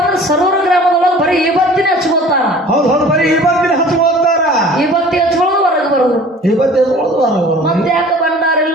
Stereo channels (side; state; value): both; normal; correlation 0.46